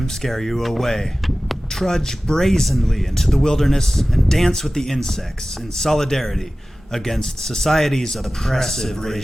scare you away. Trudge brazenly into the wilderness and dance with the insects in solidarity against society's oppressive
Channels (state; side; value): normal; both; correlation 0.97